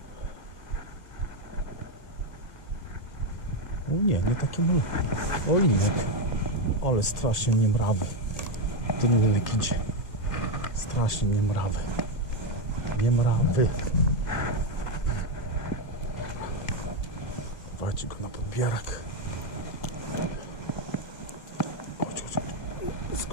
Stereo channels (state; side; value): late; right; 1.9 ms